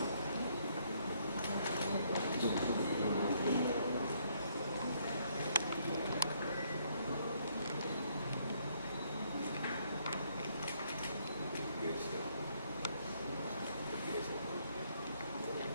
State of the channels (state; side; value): inverted; both; correlation -0.70